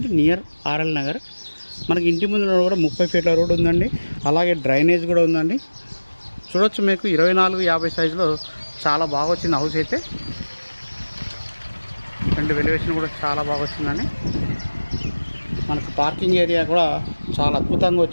నియర్ ఆర్ఎల్ నగర్. మనకి ఇంటి ముందు కూడా 30 ఫీట్ల రోడ్ ఉందండి, అలాగే డ్రైనేజ్ కూడా ఉందండి. చూడొచ్చు, మీకు 24-50 సైజులో చాలా బాగా వచ్చింది హౌస్ అయితే. రెండు వెలివేషన్ కూడా చాలా బాగా వచ్చిందండి. మనకు పార్కింగ్ ఏరియా కూడా చాలా అద్భుతంగా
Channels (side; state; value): both; inverted; correlation -1.00